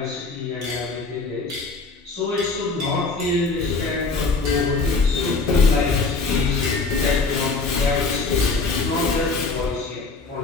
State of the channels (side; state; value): right; quieter; 4.0 dB